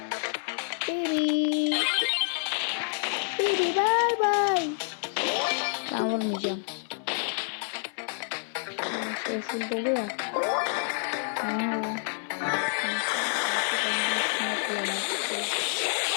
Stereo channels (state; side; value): silent; right; digital silence